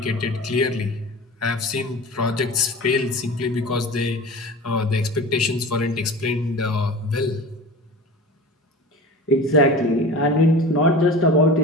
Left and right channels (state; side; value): normal; both; correlation 0.35